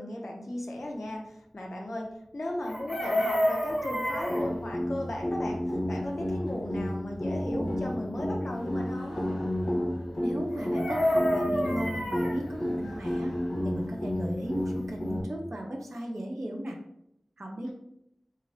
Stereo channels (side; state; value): both; normal; correlation 0.97